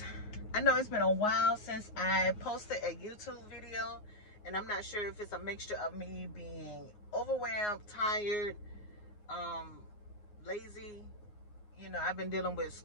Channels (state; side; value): late; right; 9.6 ms